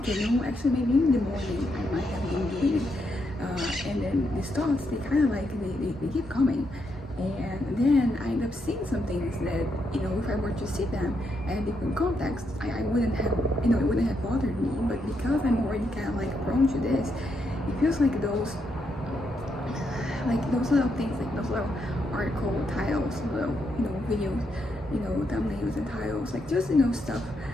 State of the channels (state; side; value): normal; both; correlation 0.79